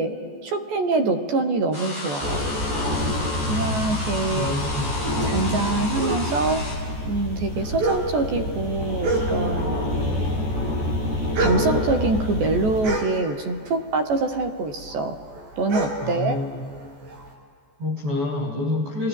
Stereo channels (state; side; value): late; left; 14 ms